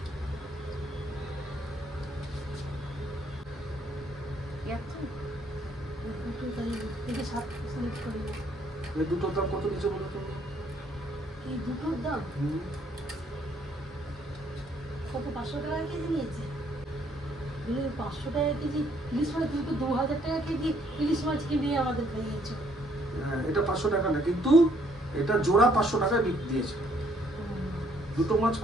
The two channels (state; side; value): normal; both; correlation 0.66